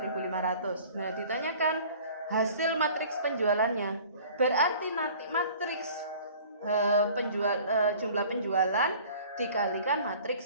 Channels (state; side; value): inverted; both; correlation -0.48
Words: Nah, ditanyakan hasil matriks penjualannya. Berarti nanti matriks jumlah penjualan dikalikan matriks